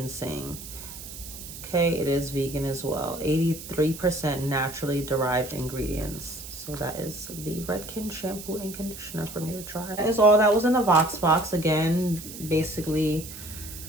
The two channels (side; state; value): right; noise; hiss, 12 dB below the sound